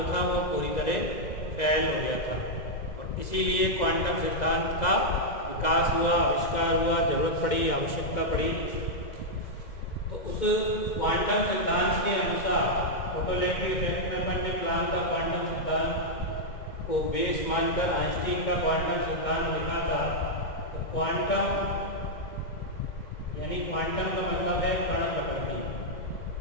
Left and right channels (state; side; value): late; right; 2.0 ms